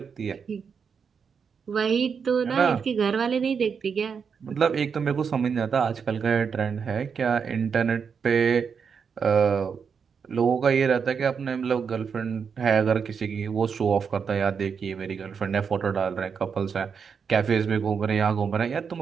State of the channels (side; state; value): left; quieter; 6.3 dB